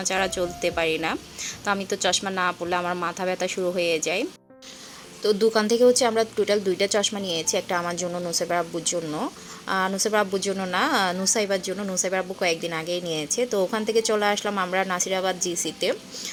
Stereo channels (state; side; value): identical; both; correlation 1.00